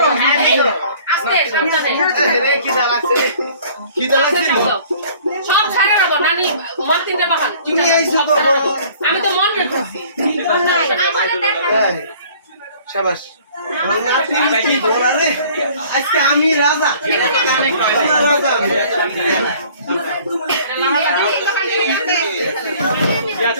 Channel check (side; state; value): both; inverted; correlation -0.52